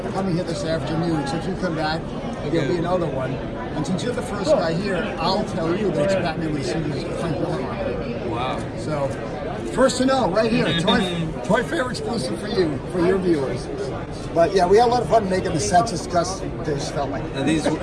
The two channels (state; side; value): identical; both; correlation 1.00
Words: coming here this afternoon. So if you come back, there'll be another one. And since you're the first guy here, I'll tell you that it's Batman with Super's Frank Miller on it. Wow. So first to know, right here, Toy Fair exclusive for you, for your viewers. But yeah, we had a lot of fun making the sets just they just felt like. And these